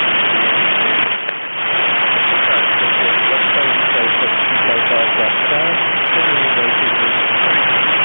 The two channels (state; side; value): inverted; both; correlation -1.00